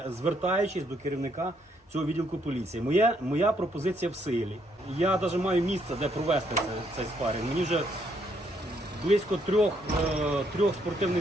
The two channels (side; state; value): both; normal; correlation 0.72